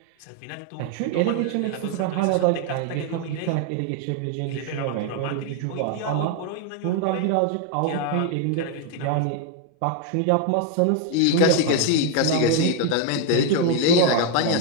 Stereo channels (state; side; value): different; both; correlation 0.01